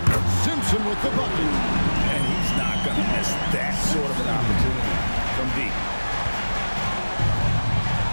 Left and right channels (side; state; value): both; inverted; correlation -1.00